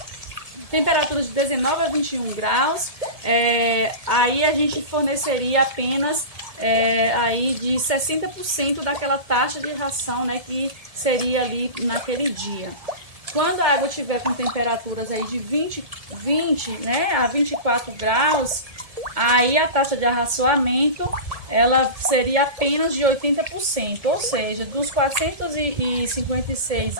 Temperaturas de 19 a 21 graus, aí a gente forneceria apenas aí de 60% daquela taxa de ração, né, que seria ali naquele dia. Quando a água estiver com temperaturas aí de 20, né, a 24 graus, aí a taxa de arraçoamento ela seria apenas de 80%, ou seja, dos 456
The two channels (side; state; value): left; late; 1.7 ms